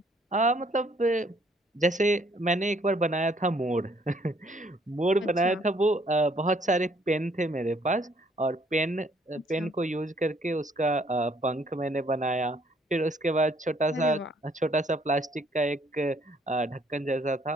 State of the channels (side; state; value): both; normal; correlation 0.65